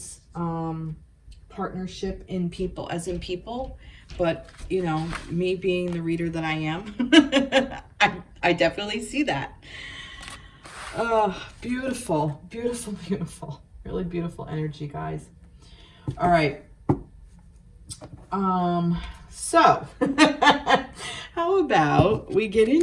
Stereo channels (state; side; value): identical; both; correlation 1.00